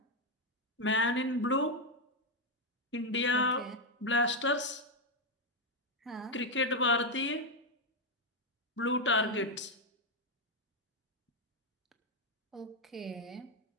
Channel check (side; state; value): both; normal; correlation 0.03